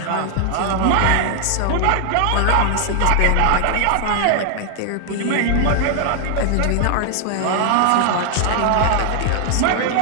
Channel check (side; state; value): both; different; correlation 0.00